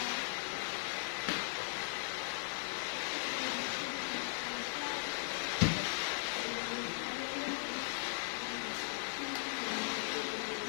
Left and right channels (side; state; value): right; silent; 52 dB below the other